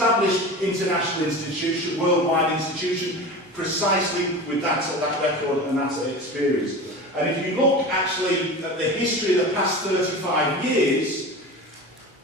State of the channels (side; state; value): both; normal; correlation 0.31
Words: international institution, worldwide institution, precisely with that record and that experience. And if you look actually at the history of the past 35 years,